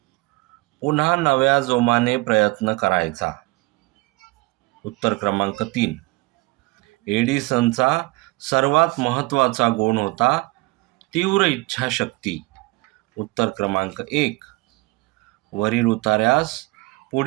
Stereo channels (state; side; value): quieter; left; 23.0 dB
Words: पुन्हा नव्या जोमाने प्रयत्न करायचा. उत्तर क्रमांक 3. एडिसनचा सर्वात महत्त्वाचा गुण होता तीव्र इच्छाशक्ती. उत्तर क्रमांक 1. वरील उतार्यास